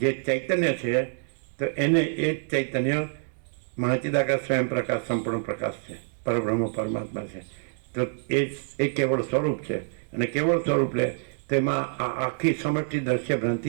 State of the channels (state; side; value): silent; left; 60 dB below the other